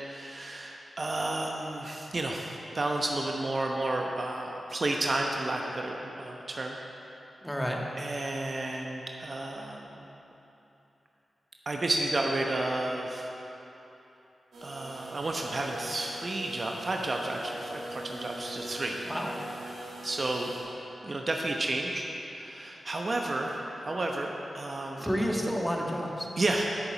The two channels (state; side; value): normal; both; correlation 0.94